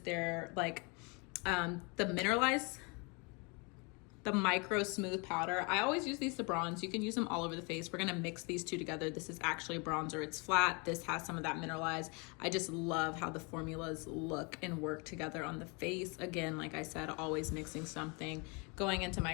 like the mineralized, the micro smooth powder. I always use these to bronze. You can use them all over the face. We're gonna mix these 2 together. This is actually a bronzer. It's flat. This has some of that mineralized. I just love how the formulas look and work together on the face. Again, like I said, always mixing something. Going into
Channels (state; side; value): quieter; right; 31.4 dB